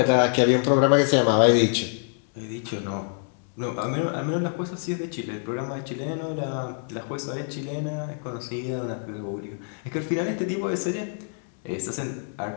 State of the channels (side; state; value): right; silent; 59 dB below the other